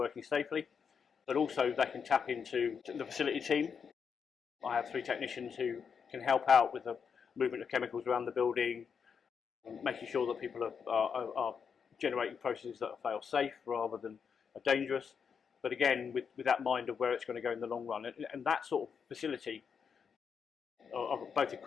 safely, but also they can tap into the facility team. I have 3 technicians who can help out with the movement of chemicals around the building, making sure that people are generating processes that are fail safe rather than are dangerous, but again with that mind of where it's going to go in the long run. And that sort of facility of both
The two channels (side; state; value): right; quieter; 6.5 dB